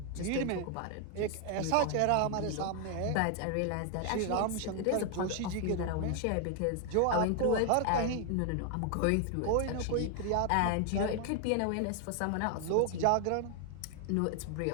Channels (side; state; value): both; different; correlation 0.00